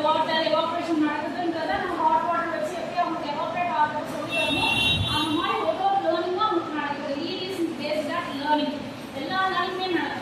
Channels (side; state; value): both; identical; correlation 1.00